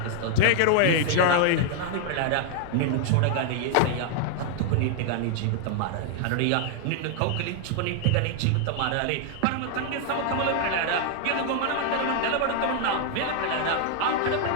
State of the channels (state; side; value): different; both; correlation 0.00